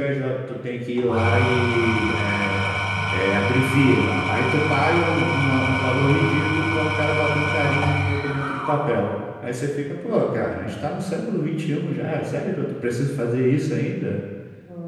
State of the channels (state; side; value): identical; both; correlation 1.00